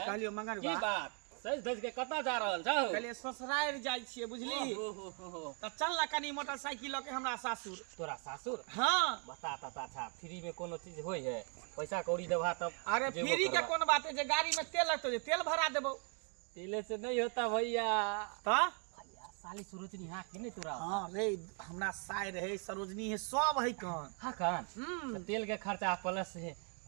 मंगरुआ की बात सज धज के कता जा रहल छौ? कहलिए ससुराल जाय छिए, बुझली? त चल ना कनी मोटरसाइकिल के हमरा सासुर। तोरा सासुर? हां बता ता अच्छा फ्री में कोनो चीज होय है? पैसा कौड़ी देबा तब। अरे फ्री के कोन बात है, जे गाड़ी में तेल लगतो, जे तेल भरा देबो। तेले से नहीं होता भैया। त भैया साली सरोजनी हां कि नहीं तोरा? हां रे, हमरा साय रहे, सरोजनी है, सब है कान। हां कान। तेल के खर्चा प्लस है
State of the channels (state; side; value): quieter; left; 39.7 dB